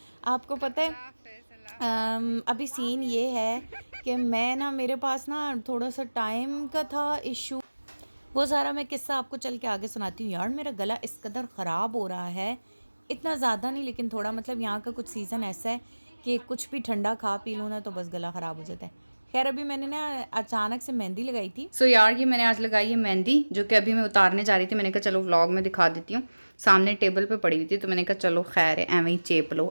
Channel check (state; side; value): inverted; both; correlation -1.00